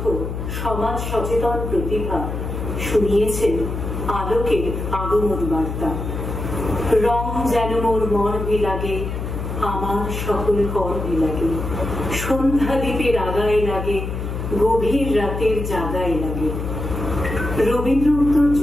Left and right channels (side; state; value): left; noise; hum, 5 dB below the sound